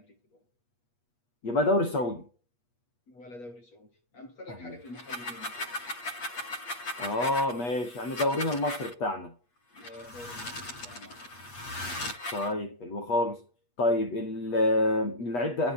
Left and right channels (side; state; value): right; late; 8.3 ms